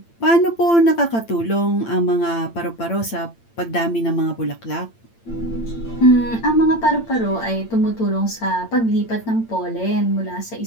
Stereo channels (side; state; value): right; late; 8.8 ms